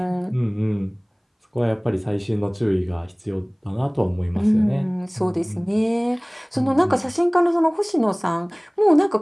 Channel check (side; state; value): both; identical; correlation 1.00